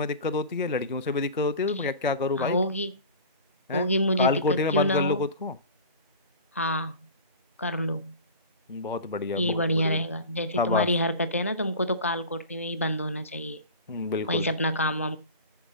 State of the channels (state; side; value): inverted; both; correlation -0.35